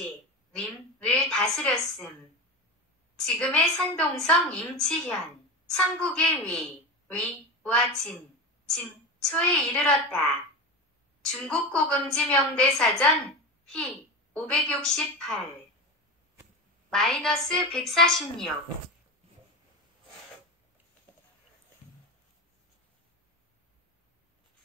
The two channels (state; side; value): normal; both; correlation 0.23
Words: 다스렸음. 지금의 산동성 임치현, 삼국의 위와 진초에 이르렀다. 중국 고금지 명대사전 희 568 -146